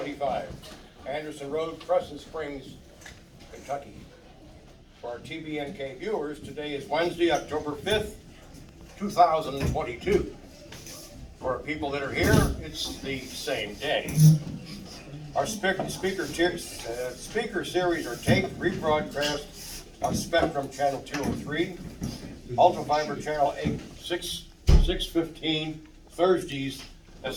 Anderson Road, Crescent Springs, Kentucky. For our TBNK viewers, today is Wednesday, October 5th, 2022. For our people that are here, it's the same day. Our speaker series are taped, rebroadcast on Spectrum Channel 203, Ultra Fiber Channel 615, Thursdays at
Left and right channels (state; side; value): identical; both; correlation 1.00